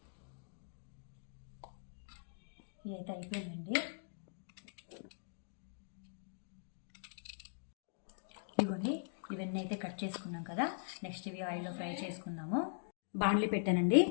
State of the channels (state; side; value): silent; right; digital silence